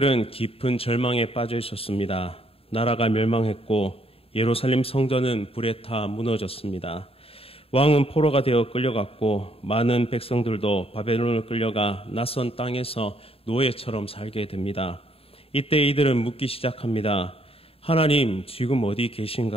깊은 절망에 빠져 있었습니다. 나라가 멸망했고 예루살렘 성전은 불에 타 무너졌습니다. 왕은 포로가 되어 끌려갔고 많은 백성들도 바벨론을 끌려가 낯선 땅에서 노예처럼 살게 됩니다. 이때 이들은 묻기 시작합니다. 하나님, 지금 어디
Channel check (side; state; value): right; late; 0.28 ms